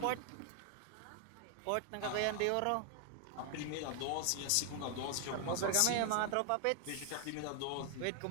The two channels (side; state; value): both; different; correlation 0.00